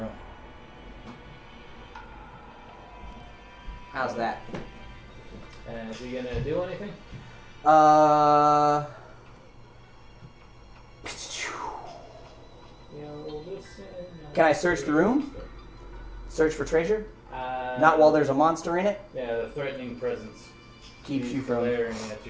How's that? And is he gonna do anything? Can I search the room? Search for treasure? Not while there's a monster in it? Yeah, the threatening presence Keeps He's you from... glaring at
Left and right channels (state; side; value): identical; both; correlation 1.00